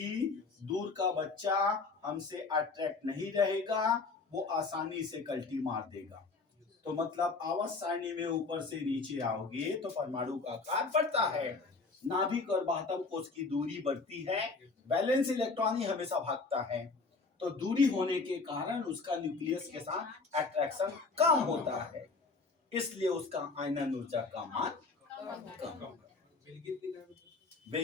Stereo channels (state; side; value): quieter; right; 4.0 dB